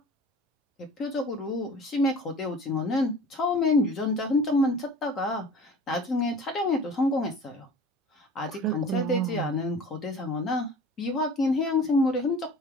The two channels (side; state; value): both; normal; correlation 0.43